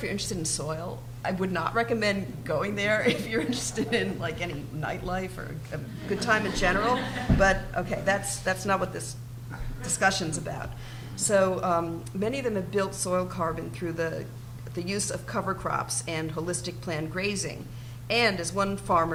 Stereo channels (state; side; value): identical; both; correlation 1.00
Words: you're interested in soil. I would not recommend going there if you're interested in like any nightlife or a good time in general. But okay, that's not what this discussion's about. So many of them have built soil carbon through the use of cover crops and holistic planned grazing. And as one